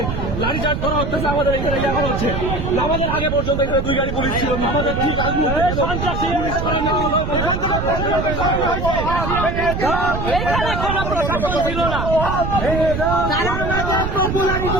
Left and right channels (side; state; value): right; noise; rumble, 3 dB below the sound